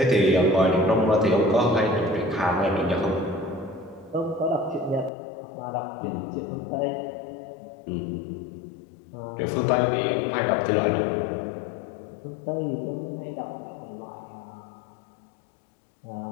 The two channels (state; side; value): drops out; right; at 5.1 s